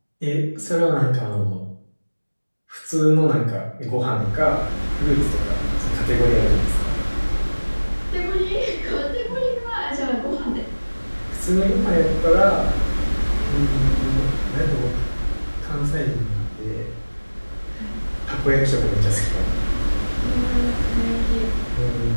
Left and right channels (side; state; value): both; inverted; correlation -1.00